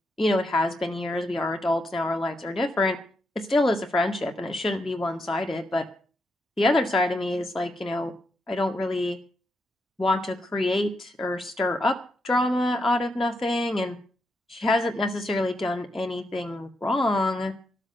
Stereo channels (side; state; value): both; normal; correlation 0.82